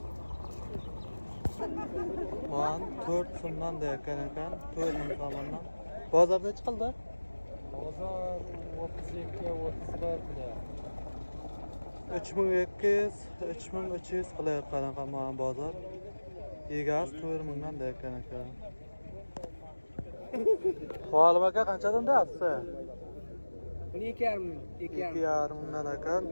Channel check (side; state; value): both; inverted; correlation -1.00